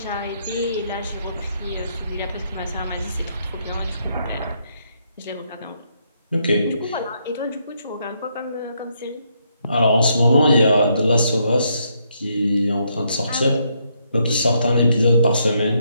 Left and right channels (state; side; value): inverted; both; correlation -0.76